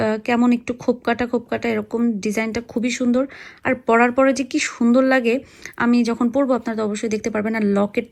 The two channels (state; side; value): identical; both; correlation 1.00